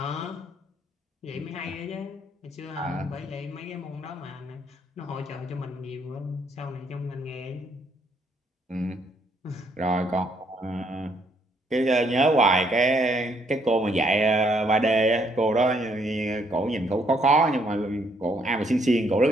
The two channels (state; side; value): normal; both; correlation 0.70